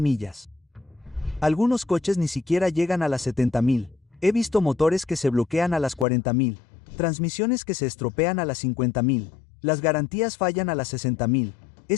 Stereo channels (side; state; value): right; drops out; at 6.1 s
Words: Algunos coches ni siquiera llegan a las 70.000. He visto motores que se bloquean a las 40.000. Transmisiones que se estropean a las 50.000. Las garantías fallan a las 60.000.